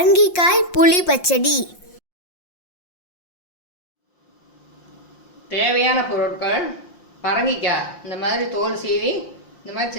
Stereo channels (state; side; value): late; right; 5.6 ms